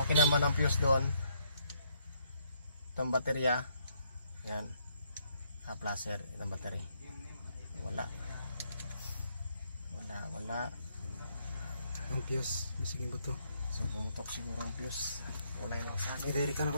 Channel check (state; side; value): inverted; both; correlation -0.71